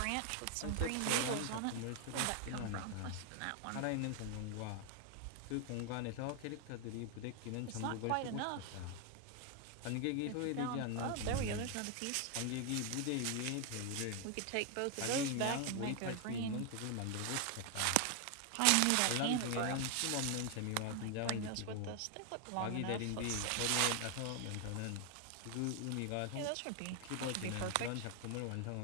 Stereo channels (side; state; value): both; different; correlation 0.00